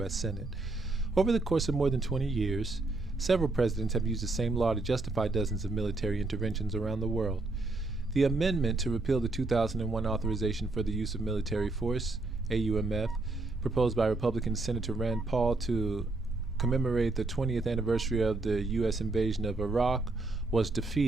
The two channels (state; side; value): quieter; left; 3.2 dB